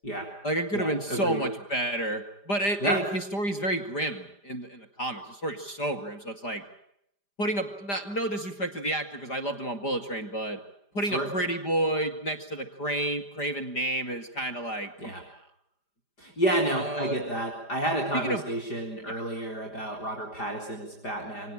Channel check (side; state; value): right; late; 5.0 ms